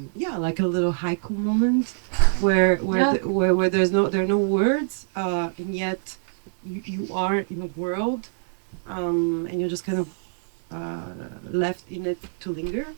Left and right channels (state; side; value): silent; left; 58 dB below the other